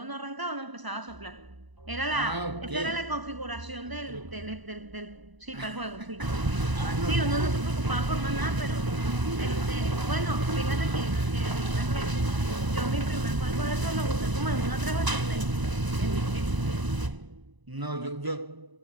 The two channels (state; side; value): late; left; 1.0 ms